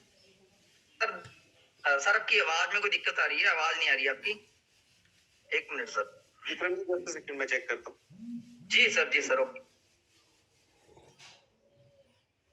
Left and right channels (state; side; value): identical; both; correlation 1.00